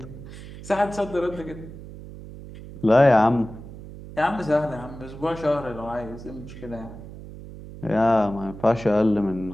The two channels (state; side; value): noise; right; hum, 14 dB below the sound